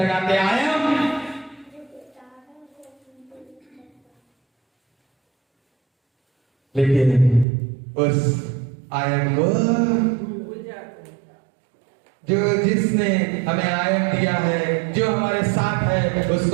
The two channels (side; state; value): left; drops out; at 7.5 s